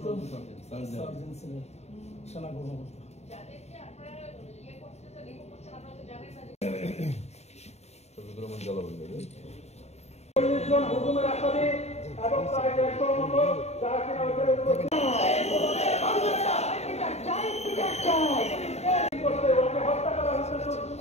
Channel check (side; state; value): right; late; 0.31 ms